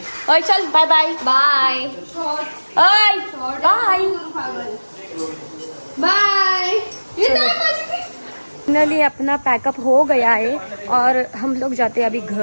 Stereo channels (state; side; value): inverted; both; correlation -1.00